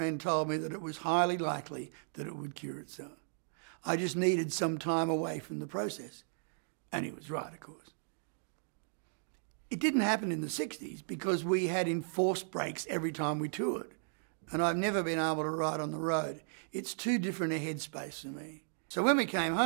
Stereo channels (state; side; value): silent; left; digital silence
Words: told me that it was highly likely that it would cure itself. I just needed some time away from the process. And he was right, of course. It didn't happen in the 60s because we had enforced breaks every time we toured. And I've never been able to write on the road. It's too different a headspace for me. So when we came